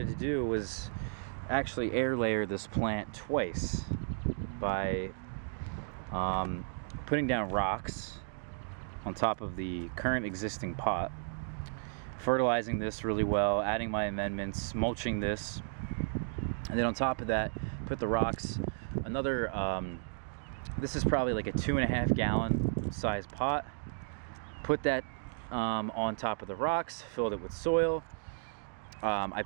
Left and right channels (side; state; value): left; silent; digital silence